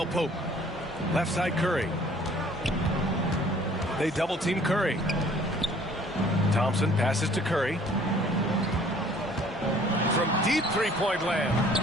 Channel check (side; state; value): both; normal; correlation 0.55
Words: Pope. Left side, Curry. They double-team Curry. Thompson passes to Curry. From deep three-point land.